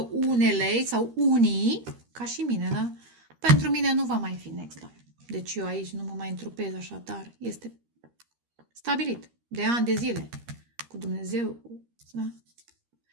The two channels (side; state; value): left; late; 13 ms